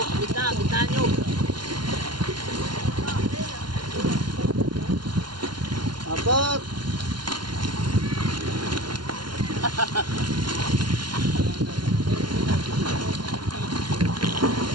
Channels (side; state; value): left; late; 0.71 ms